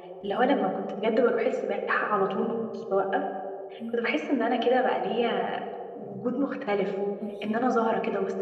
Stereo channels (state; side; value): identical; both; correlation 1.00